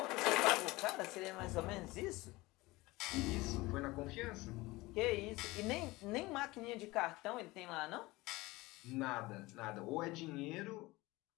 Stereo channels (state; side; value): quieter; right; 21.0 dB